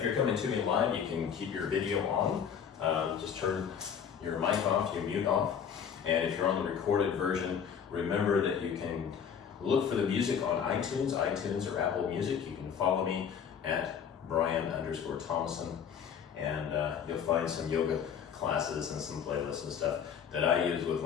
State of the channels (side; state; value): right; quieter; 7.7 dB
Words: you're coming to me live, you can keep your video on. Just turn your mic off, your mute off, and if you're on the recorded version, remember that you can look for the music on iTunes or Apple Music. You can follow me at Brian_Thomason, and you'll find some yoga classes and some playlists and stuff that I use with